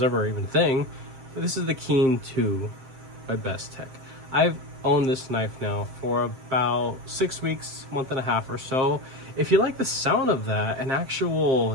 ever even a thing. But this is the Keen 2 by Bestech. I've owned this knife now for about 6 weeks, month and a half or so. If you like the sound of that, an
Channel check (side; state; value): left; late; 7.6 ms